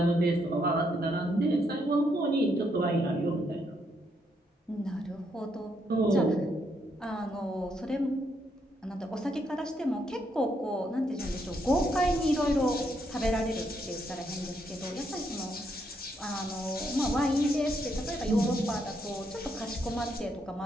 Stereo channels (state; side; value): normal; both; correlation 0.76